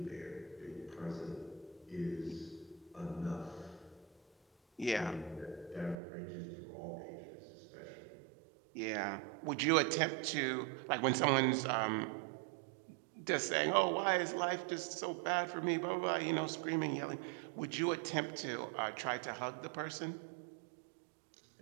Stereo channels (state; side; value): drops out; left; at 6.0 s